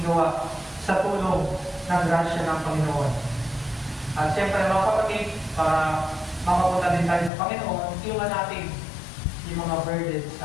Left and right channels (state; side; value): drops out; right; at 7.3 s